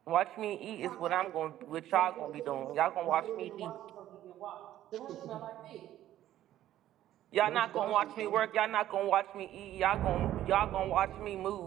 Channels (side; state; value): left; quieter; 12.9 dB